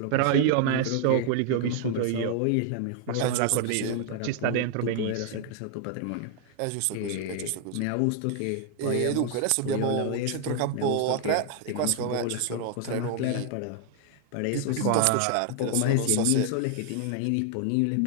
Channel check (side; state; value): both; different; correlation 0.00